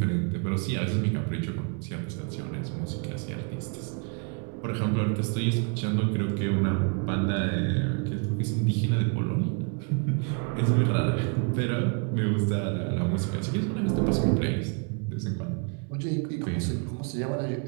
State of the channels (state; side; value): quieter; left; 37.2 dB